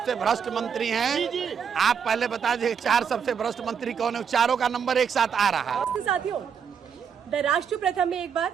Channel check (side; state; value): left; quieter; 7.1 dB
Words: भ्रष्ट मंत्री हैं, आप पहले बता दीजिए 4 सबसे भ्रष्ट मंत्री कौन है? चारों का नंबर एक साथ आ रहा है। साथियों, द राष्ट्र प्रथम में एक बार